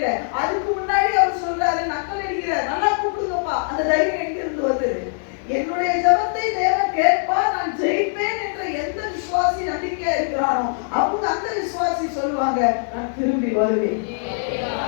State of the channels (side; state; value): right; silent; digital silence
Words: அதுக்கு முன்னாடி அவர் சொல்றாரு, நக்கல் அடிக்கிறார், நல்லா கூப்பிடுங்கப்பா. அந்த தைரியம் எங்க இருந்து வந்தது? என்னுடைய ஜெபத்தை தேவன் கேட்பார், நான் ஜெயிப்பேன் என்ற எந்த விசுவாசி நம்பிக்கையா இருக்கிறானோ அவங்க அந்த விசுவாசி சொல்லுவாங்க, நான் திரும்பி வருவேன்